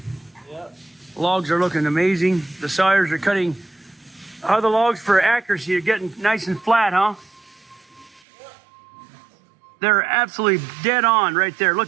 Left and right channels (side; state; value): left; drops out; at 8.2 s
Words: Yep. Logs are looking amazing. The sawyers are cutting other logs for accuracy. Are getting nice and flat, huh? They're absolutely dead on right there.